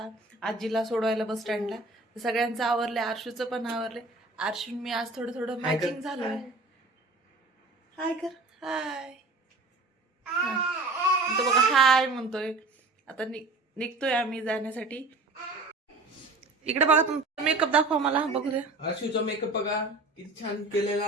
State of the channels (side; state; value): left; quieter; 3.1 dB